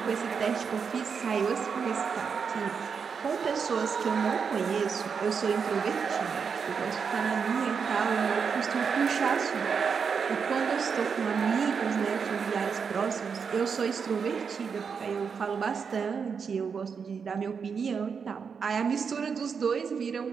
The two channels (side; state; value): left; quieter; 6.1 dB